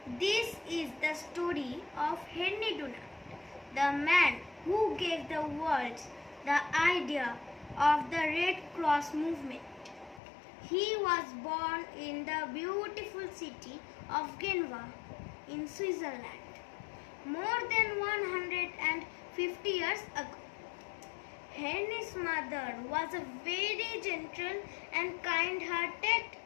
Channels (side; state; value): right; drops out; at 10.2 s